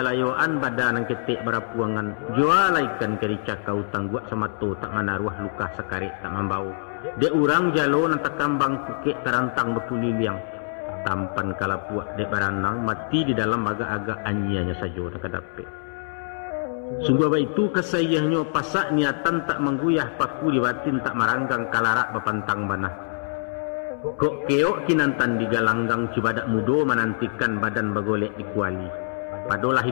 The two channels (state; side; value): silent; right; 62 dB below the other